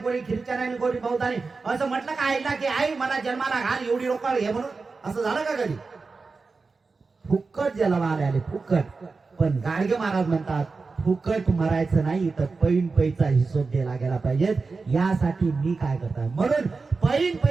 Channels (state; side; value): quieter; left; 4.2 dB